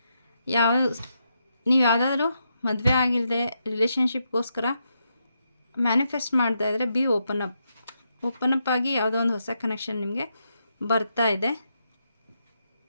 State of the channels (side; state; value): both; inverted; correlation -0.82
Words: ನೀವು ಯಾವುದಾದ್ರೂ ಮದುವೆ ಆಗಿಲ್ಲದೆ ರಿಲೇಷನ್ಶಿಪ್ಗೋಸ್ಕರ ಮ್ಯಾನಿಫೆಸ್ಟ್ ಮಾಡ್ತಾ ಇದ್ದರೆ ಬಿ ಓಪನ್ ಅಪ್ ಆಗಿ ಯಾವುದೋ ಒಂದು ಹೊಸ ಕನೆಕ್ಷನ್ ನಿಮಗೆ ಬರ್ತಾ ಇದೆ.